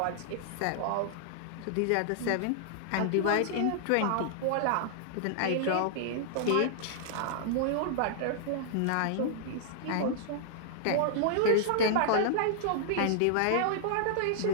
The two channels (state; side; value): different; both; correlation -0.01